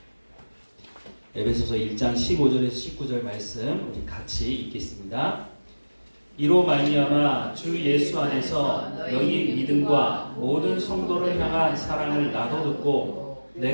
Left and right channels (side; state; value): both; inverted; correlation -1.00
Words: 에베소서 1장 15절에서 19절 말씀 우리 같이 읽겠습니다. 이로 말미암아 주 예수 안에서 너희 믿음과 모든 성도를 향한 사랑을 나도 듣고